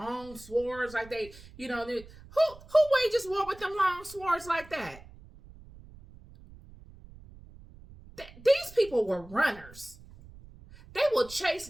swords like who wages war with them long swords like that? These people were runners. They will chase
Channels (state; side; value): noise; right; rumble, 20 dB below the sound